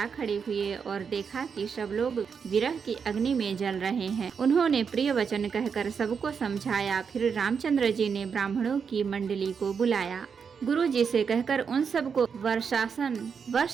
खड़े हुए और देखा कि सब लोग विरह की अग्नि में जल रहे हैं। उन्होंने प्रिय वचन कहकर सबको समझाया। फिर रामचंद्र जी ने ब्राह्मणों की मंडली को बुलाया। गुरु जी से कहकर उन सबको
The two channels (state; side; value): quieter; left; 6.3 dB